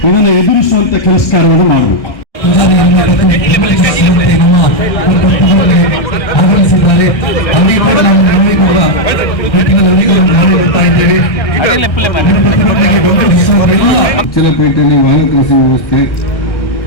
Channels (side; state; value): right; late; 1.7 ms